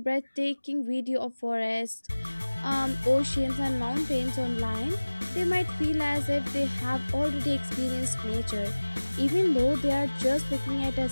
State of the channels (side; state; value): both; inverted; correlation -1.00